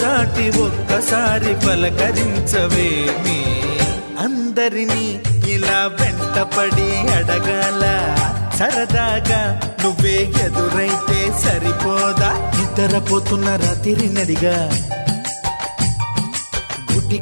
దాటి ఒక్కసారి పలకరించవేమి అందరినీ ఇలా వెంటపడి అడగాల సరదాగా నువ్వే ఎదురైతే సరిపోదా నిద్రపోతున్న రాత్రి నడిగా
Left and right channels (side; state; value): both; inverted; correlation -1.00